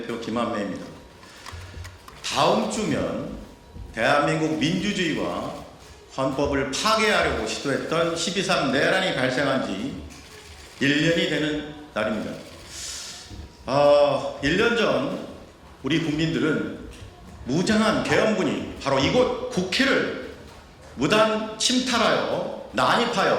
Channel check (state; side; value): identical; both; correlation 1.00